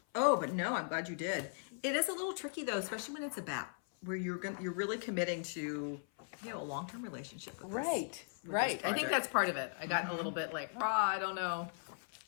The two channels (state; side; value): silent; right; 52 dB below the other